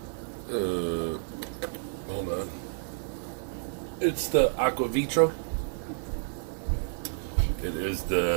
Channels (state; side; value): silent; left; digital silence